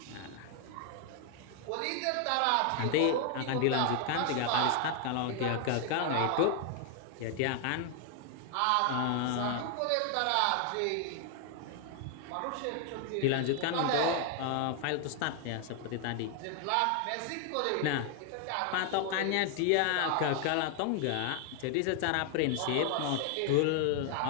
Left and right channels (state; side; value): different; both; correlation 0.00